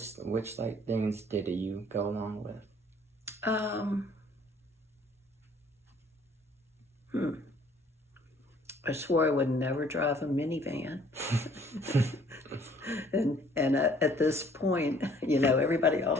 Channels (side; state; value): both; normal; correlation 0.58